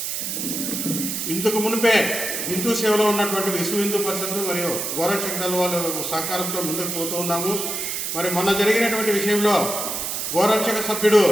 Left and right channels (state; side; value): noise; right; hiss, 3 dB below the sound